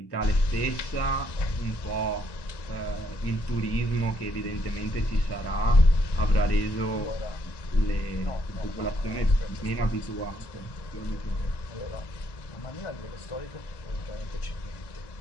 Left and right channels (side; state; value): right; late; 1.1 ms